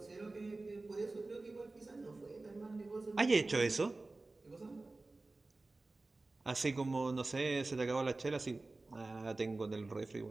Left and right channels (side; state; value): left; quieter; 3.2 dB